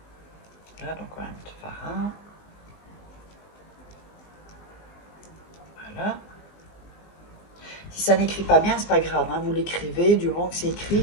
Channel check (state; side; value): late; right; 19 ms